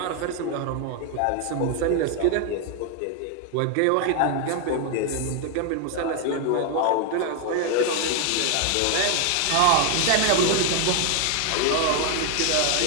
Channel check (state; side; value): different; both; correlation 0.01